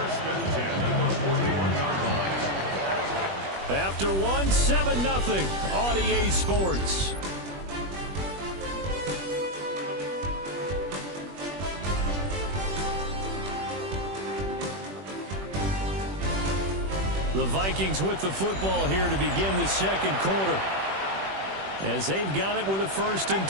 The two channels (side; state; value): left; late; 21 ms